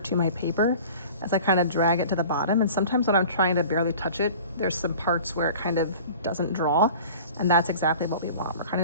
to my paper as I kind of drag it to the bottom. And sometimes when I'm trying to barely touch it, there's some parts where it kind of doesn't draw, and that's exactly what we want. We're kind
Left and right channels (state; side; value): inverted; both; correlation -0.43